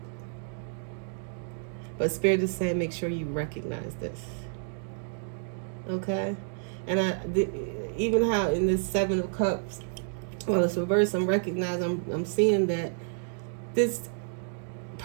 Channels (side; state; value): left; silent; digital silence